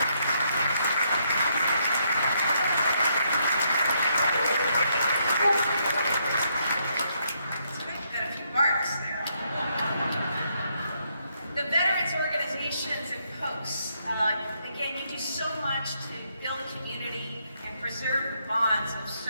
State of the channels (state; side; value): inverted; both; correlation -0.75